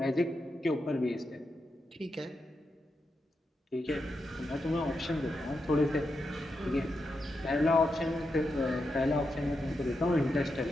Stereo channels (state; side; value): normal; both; correlation 0.86